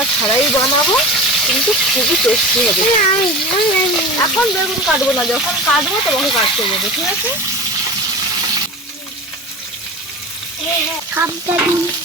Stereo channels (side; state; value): both; normal; correlation 0.30